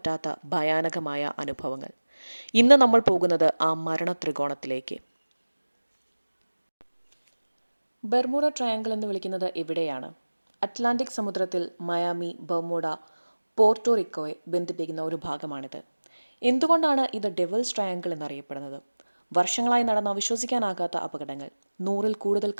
ഭയാനകമായ അനുഭവങ്ങൾ. ഇന്ന് നമ്മൾ പോകുന്നത് ആ മരണ ത്രികോണത്തിലേക്ക്. ബർമുഡ ട്രയാങ്കിൾ എന്ന് വിളിക്കുന്നത് ഇവിടെയാണ്. അറ്റ്ലാന്റിക് സമുദ്രത്തിൽ മയാമി, ബർമുഡ, പോർട്ടോറിക്കോയെ ബന്ധിപ്പിക്കുന്ന ഒരു ഭാഗമാണിത്. എന്തുകൊണ്ടാണ് ഇത് ഡെവിൾസ് ട്രയാങ്കിൾ എന്നറിയപ്പെടുന്നത്? വർഷങ്ങളായി നടന്ന വിശ്വസിക്കാനാകാത്ത അപകടങ്ങൾ, 100-ൽ കൂടുതൽ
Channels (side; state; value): both; inverted; correlation -1.00